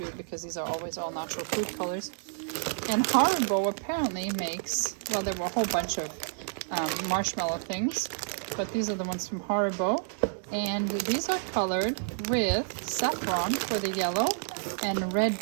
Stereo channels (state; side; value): silent; left; digital silence